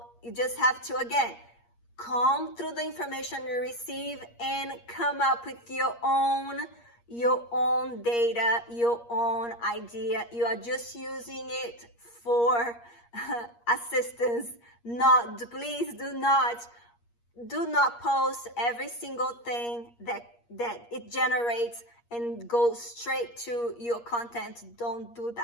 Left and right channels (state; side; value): late; right; 8.5 ms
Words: you just have to, again, comb through the information you receive and come up with your own data, your own idea. You are just using it for assistance. Please do not post every single thing that it generates and go straight to your content. Don't do